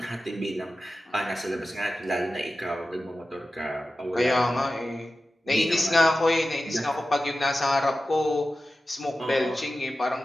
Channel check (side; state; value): both; normal; correlation 0.94